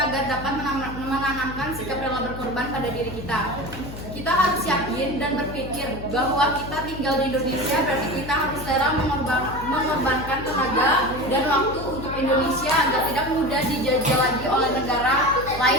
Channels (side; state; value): left; noise; hum, 11 dB below the sound